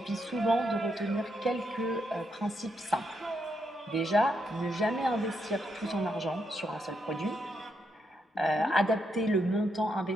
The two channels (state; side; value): normal; both; correlation 0.80